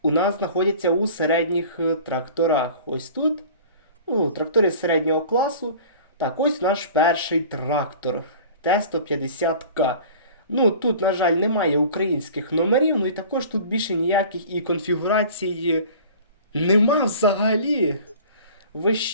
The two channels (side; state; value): both; inverted; correlation -0.43